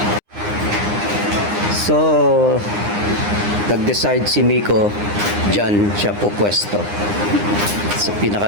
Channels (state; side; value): late; left; 9.8 ms